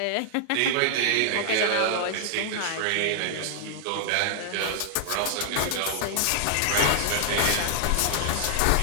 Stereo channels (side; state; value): both; different; correlation -0.01